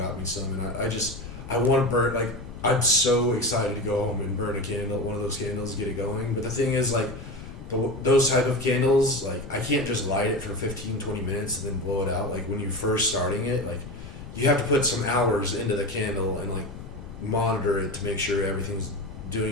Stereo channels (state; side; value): noise; left; rumble, 13 dB below the sound